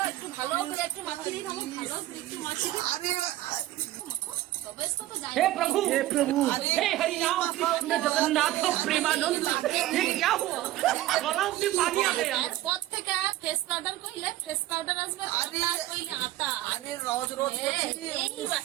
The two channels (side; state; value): left; quieter; 15.1 dB